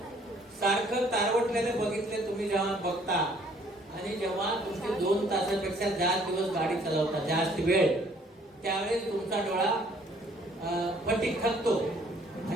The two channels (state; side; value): normal; both; correlation 0.61